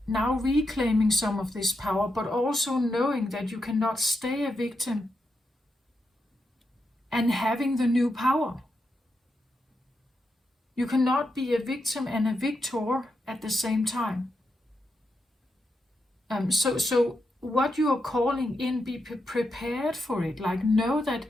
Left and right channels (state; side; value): normal; both; correlation 0.85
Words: Now reclaiming some of this power, but also knowing that you cannot stay a victim and having the new power. You cannot be a victim and a victor at the same time. So what you are calling in, be prepared for it. Like, know that